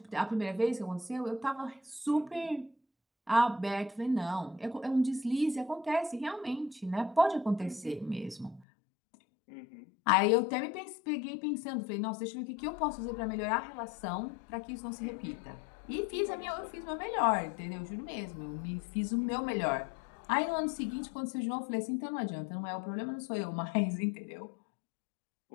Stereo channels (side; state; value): right; drops out; at 8.7 s